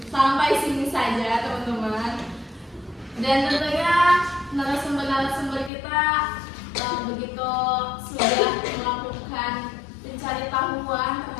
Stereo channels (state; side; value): drops out; right; at 5.7 s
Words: Sampai sini saja teman-teman. Dan tentunya narasumber kita begitu sudah melakukan mencari tahuan